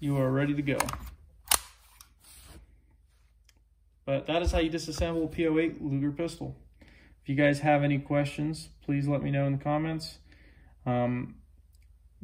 are ready to go. But that is how you disassemble a P08 Luger pistol. If you guys have any questions, please let me know in the comments.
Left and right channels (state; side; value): identical; both; correlation 1.00